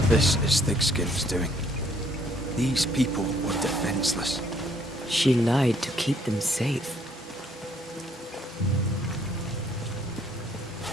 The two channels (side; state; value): both; normal; correlation 0.65